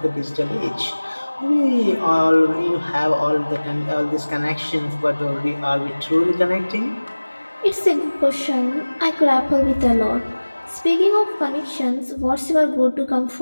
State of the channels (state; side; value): inverted; both; correlation -1.00